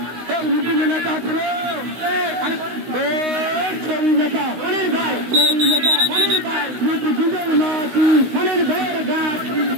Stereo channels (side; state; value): left; late; 16 ms